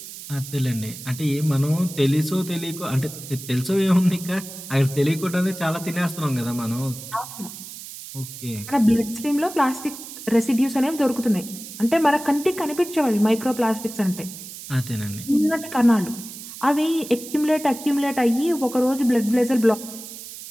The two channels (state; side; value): noise; right; hiss, 13 dB below the sound